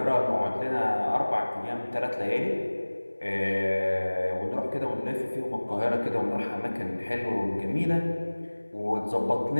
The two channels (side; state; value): both; inverted; correlation -1.00